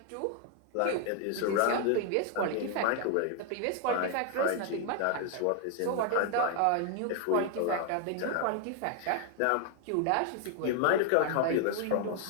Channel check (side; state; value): both; different; correlation 0.00